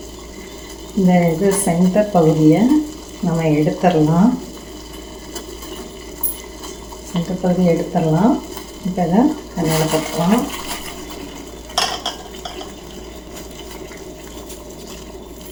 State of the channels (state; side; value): identical; both; correlation 1.00